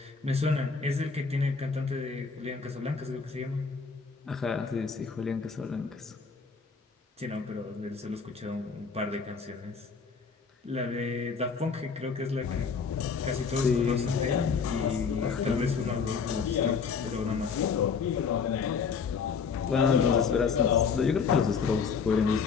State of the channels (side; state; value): right; quieter; 5.6 dB